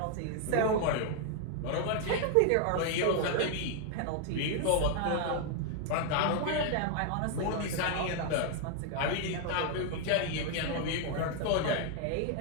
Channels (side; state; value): both; different; correlation 0.00